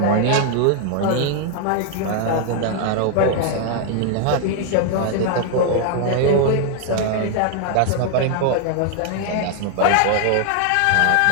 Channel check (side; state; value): both; different; correlation 0.00